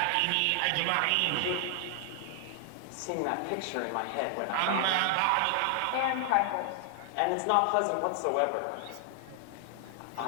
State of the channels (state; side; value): different; both; correlation 0.00